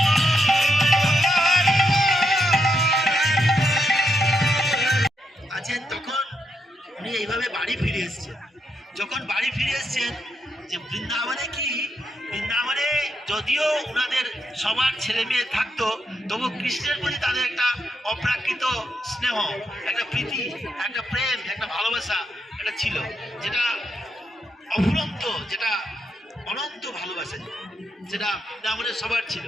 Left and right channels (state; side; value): normal; both; correlation 0.81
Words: আছেন, তখন উনি এইভাবে বাড়ি ফিরে এসছেন। যখন বাড়ি ফিরে এসছেন, যে বৃন্দাবনে যদিও ওনাদের সবার ছেলে মেয়ে থাকতো, তবু কৃষ্ণের প্রতি তাদের একটা অপ্রাকৃত স্নেহ, একটা প্রীতি, একটা প্রেম, একটা ভালোবাসা একটা ছিল, যেটা অফুরন্ত, যেটা অনন্ত ভালোবাসা, যেটা বৃন্দাবনের সবার ছিল।